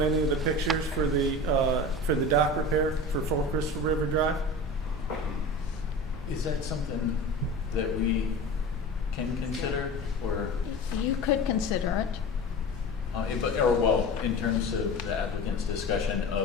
any of the pictures for the dock repair for 4 Crystal River Drive? Is that something that we can consider, or, You could consider it. in terms of the applicant's discussion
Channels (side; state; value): both; normal; correlation 0.33